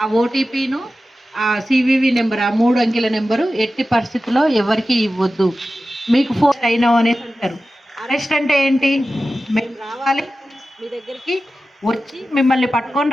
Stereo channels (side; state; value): both; normal; correlation 0.94